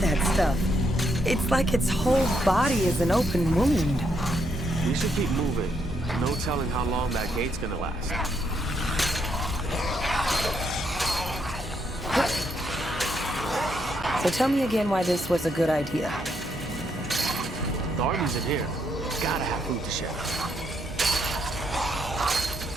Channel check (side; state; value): both; normal; correlation 0.76